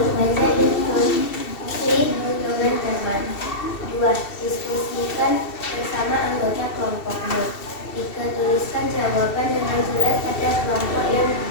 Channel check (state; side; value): late; right; 2.7 ms